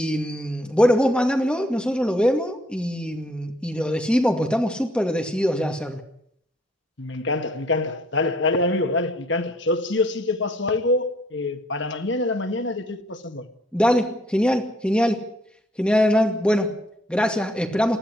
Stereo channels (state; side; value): normal; both; correlation 0.65